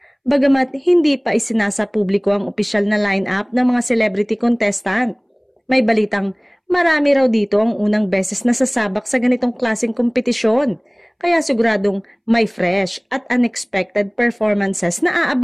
Bagamat hindi pa isinasa publiko ang opisyal na line-up ng mga celebrity contestant, may balitang marami raw dito ang unang beses na sasabak sa ganitong klaseng kompetisyon, kaya siguradong may fresh at unexpected performances na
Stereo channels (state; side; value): identical; both; correlation 1.00